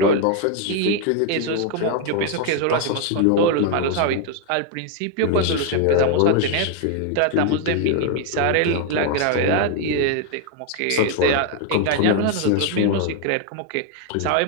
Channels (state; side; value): different; both; correlation 0.01